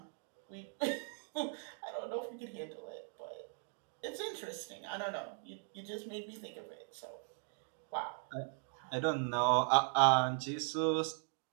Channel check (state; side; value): silent; left; 52 dB below the other